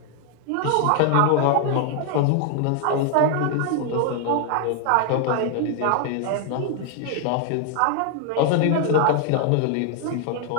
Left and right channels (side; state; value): both; different; correlation 0.00